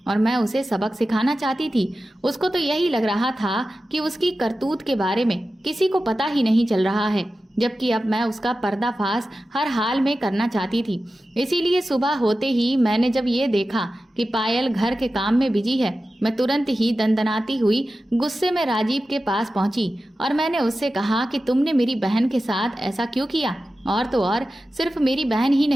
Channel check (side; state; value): both; normal; correlation 0.93